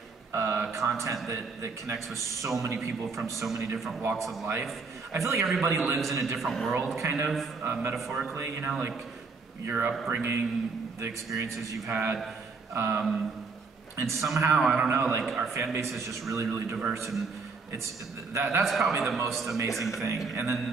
content that connects with so many people from so many different walks of life? I feel like everybody lives in a different world, kind of, metaphorically, you know, like your upbringing, the experiences you've had. and somehow, I don't know, like our fan base is just really, really diverse, and that's probably the most amazing thing.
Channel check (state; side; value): quieter; left; 4.5 dB